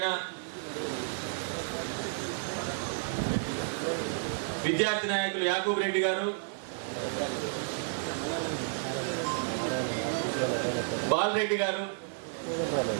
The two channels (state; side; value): silent; left; digital silence